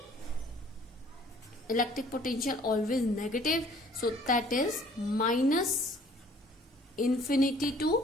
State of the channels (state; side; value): normal; both; correlation 0.56